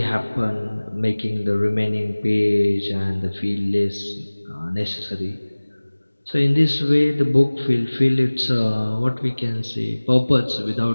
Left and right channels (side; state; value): both; inverted; correlation -1.00